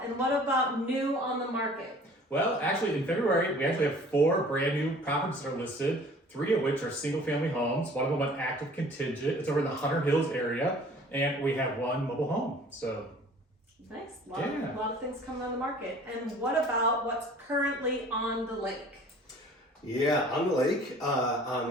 And what about new on the market? Well, actually, in February, we actually have 4 brand new properties that are listed, 3 of which are single-family homes. One of them an active contingent. It's over in the Hunter Hills area, and we have 1 mobile home. So Nice. A Yeah. lot of things coming on the market. And what about what's currently on the lake? Yeah, on the lake,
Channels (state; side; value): normal; both; correlation 0.50